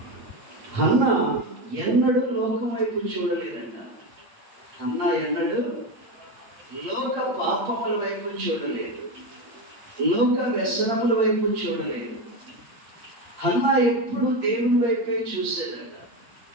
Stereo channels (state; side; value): late; left; 8.6 ms